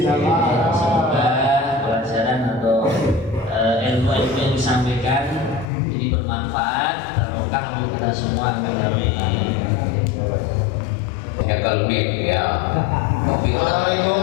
Semoga pelajaran atau ilmu-ilmu yang disampaikan ini bermanfaat, barokah untuk kita semua. Ya kalau nih ya.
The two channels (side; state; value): right; drops out; at 5.7 s